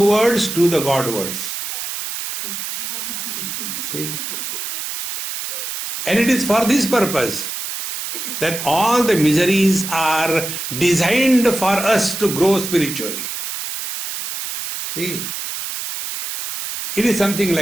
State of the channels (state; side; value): noise; right; hiss, 6 dB below the sound